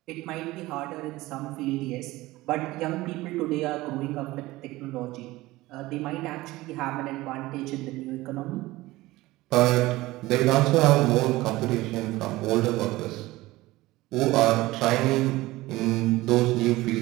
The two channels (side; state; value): left; quieter; 18.8 dB